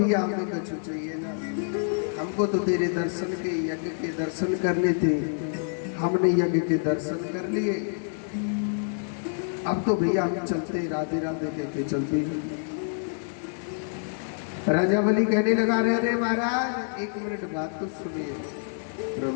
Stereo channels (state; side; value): silent; right; 60 dB below the other